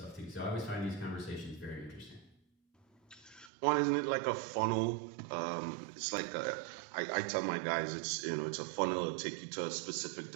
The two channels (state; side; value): drops out; left; at 3.5 s